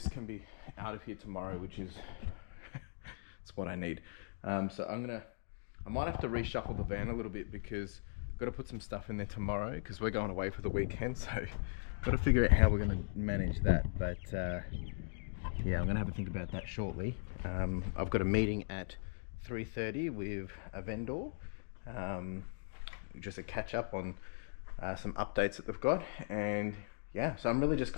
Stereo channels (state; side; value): silent; right; digital silence